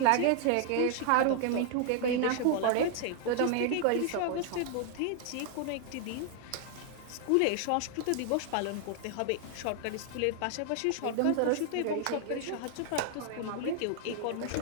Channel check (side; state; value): both; different; correlation 0.00